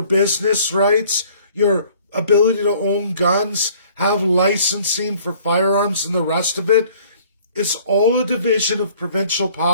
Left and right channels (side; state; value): both; inverted; correlation -0.55